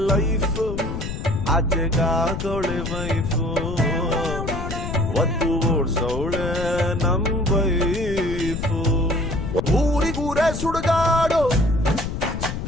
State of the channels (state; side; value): noise; left; rumble, 5 dB below the sound